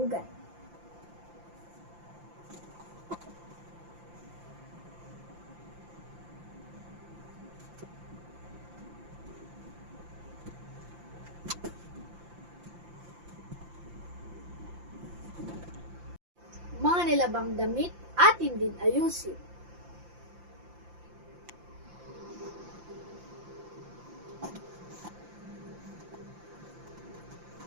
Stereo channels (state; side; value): late; left; 5.8 ms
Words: Mga nilabang damit atin din ayusin.